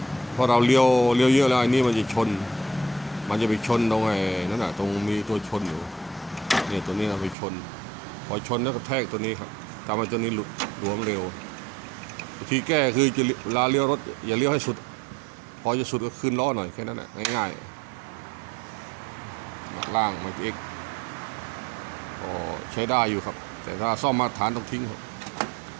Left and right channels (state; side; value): drops out; left; at 7.4 s